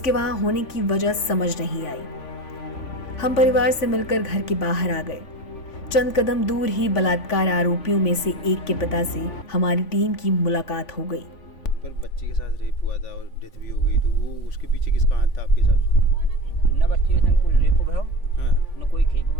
वहां होने की वजह समझ नहीं आई। हम परिवार से मिलकर घर के बाहर आ गए। चंद कदम दूर ही बलात्कार आरोपियों में से एक के पिता से हमारी टीम की मुलाकात हो गई। पर बच्चे के साथ रेप हुआ था और डेथ भी हो गई, तो वो उसके पीछे किसका हाथ था आपके हिसाब से? न बच्चे के संग कोई रेप भयो, हाँ। न कोई खेप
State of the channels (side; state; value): right; late; 3.5 ms